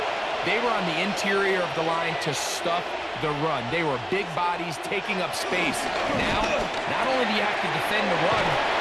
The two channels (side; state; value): both; identical; correlation 1.00